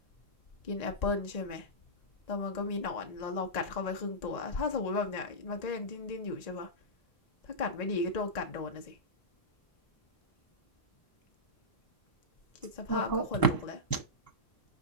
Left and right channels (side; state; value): right; late; 1.0 ms